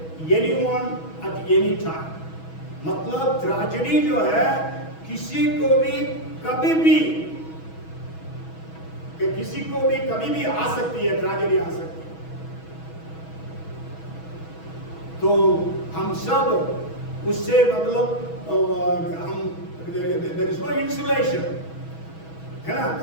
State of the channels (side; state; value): right; late; 6.2 ms